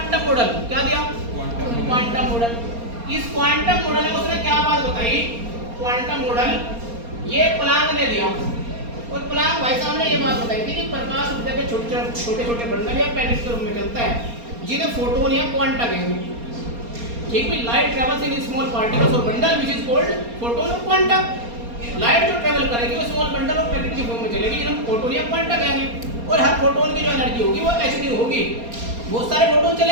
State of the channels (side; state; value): left; late; 4.3 ms